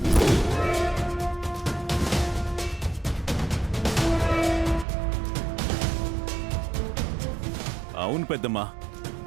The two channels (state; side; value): drops out; left; at 4.9 s